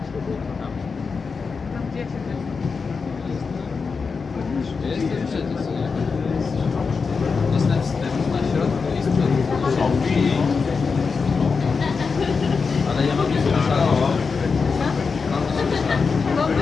tam. Tam gdzie ja się Jestem przecież, co nie?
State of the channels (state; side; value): quieter; right; 5.0 dB